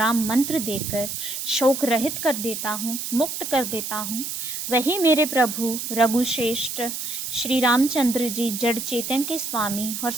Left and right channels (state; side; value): noise; right; hiss, 5 dB below the sound